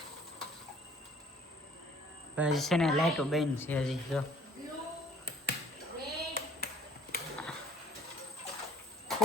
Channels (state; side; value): normal; both; correlation 0.54